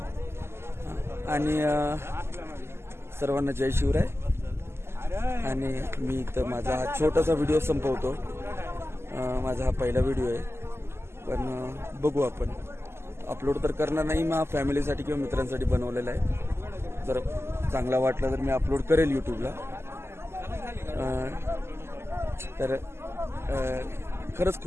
आणि सर्वांना जय शिवराय. आणि मी इथं माझा हा छोटासा व्हिडिओ संपवतो. माझा हा पहिला व्हिडिओ आहे, पण बघू, आपण अपलोड तर करणार नाही, मग फॅमिलीसाठी किंवा मित्रांसाठी बनवलेला आहे. जर चांगला वाटला तर मी अपलोड करेल यूट्यूबला. तर खरंच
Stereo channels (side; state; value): left; late; 0.12 ms